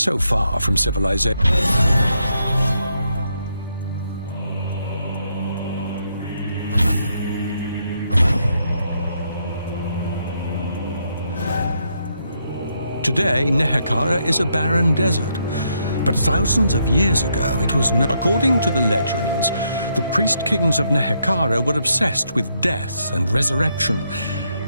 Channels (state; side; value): inverted; both; correlation -0.77